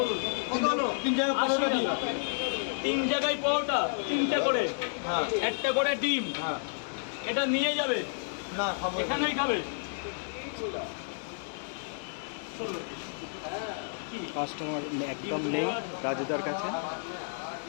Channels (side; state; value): right; silent; digital silence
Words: তিন জায়গায় পরোটা, তিনটা করে, একটা করে ডিম, এটা নিয়ে যাবে না, এখানেই খাবে। কাস্টমার একদম নেই রাজুদার কাছে,